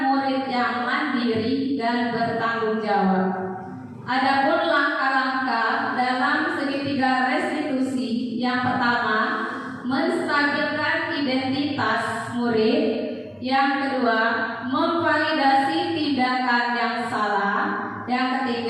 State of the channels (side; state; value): both; identical; correlation 1.00